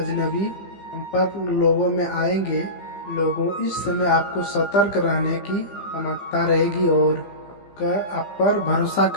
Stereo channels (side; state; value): right; late; 15 ms